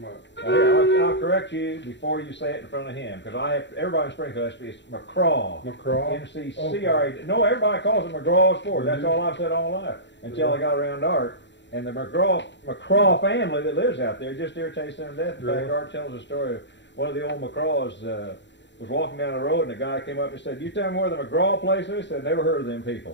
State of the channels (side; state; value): right; late; 0.52 ms